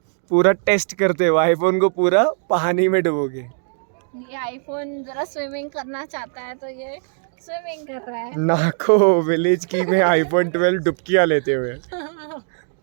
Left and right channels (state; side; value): silent; left; 65 dB below the other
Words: पूरा टेस्ट करते हुए आईफोन को पूरा पानी में डुबोगे। ये आईफोन जरा स्विमिंग करना चाहता है तो ये स्विमिंग कर रहा है। नाको विलेज की में आईफोन 12 डुबकियाँ लेते हुए।